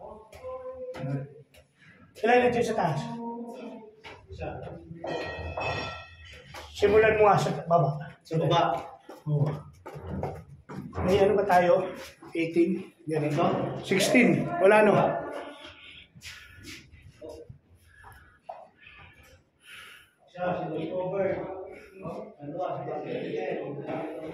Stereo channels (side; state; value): both; identical; correlation 1.00